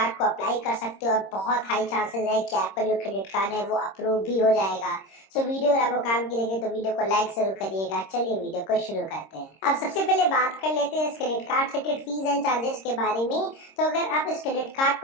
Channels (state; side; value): late; right; 26 ms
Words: को अप्लाई कर सकते हो और बहुत हाई चांसेस है कि आपका जो क्रेडिट कार्ड है वो अप्रूव भी हो जाएगा। सो वीडियो अगर आपको काम की लगे तो वीडियो को लाइक जरूर करिएगा। चलिए वीडियो को शुरू करते हैं। अब सबसे पहले बात कर लेते हैं इस क्रेडिट कार्ड से रिलेटेड फीस एंड चार्जेस के बारे में। तो अगर आप इस क्रेडिट कार्ड